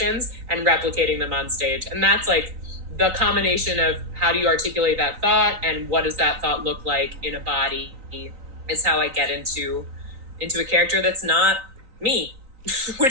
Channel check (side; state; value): left; late; 3.9 ms